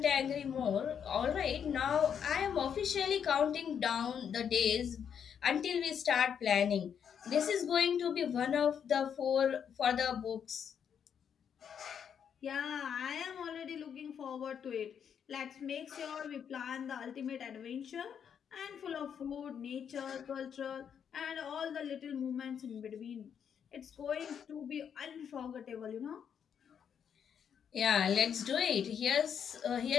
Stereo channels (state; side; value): quieter; right; 7.9 dB